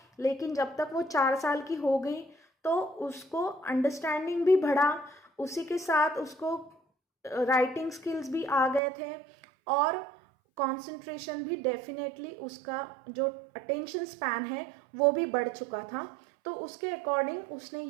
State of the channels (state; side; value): drops out; left; at 8.8 s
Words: लेकिन जब तक वो 4 साल की हो गई तो उसको अंडरस्टैंडिंग भी बढ़ा, उसी के साथ उसको राइटिंग स्किल्स भी आ गए थे और कंसंट्रेशन भी डेफिनेटली, उसका जो अटेंशन स्पैन है वो भी बढ़ चुका था। तो उसके अकॉर्डिंग उसने